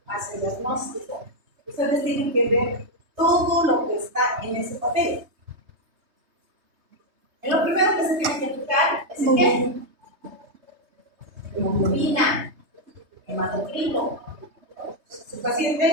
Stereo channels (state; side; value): late; left; 3.2 ms